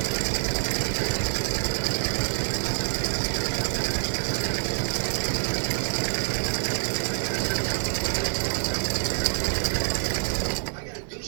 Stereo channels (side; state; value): left; silent; 61 dB below the other